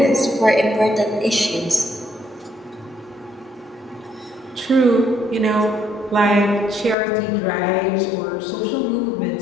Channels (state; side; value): drops out; right; at 7.0 s